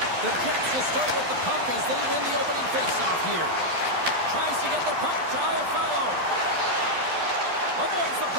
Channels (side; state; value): left; late; 12 ms